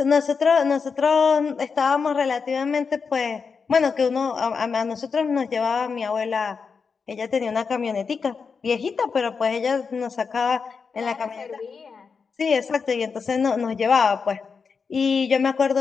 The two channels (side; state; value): right; quieter; 5.4 dB